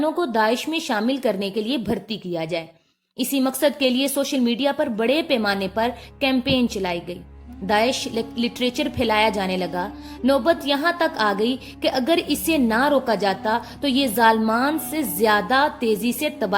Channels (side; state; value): both; identical; correlation 1.00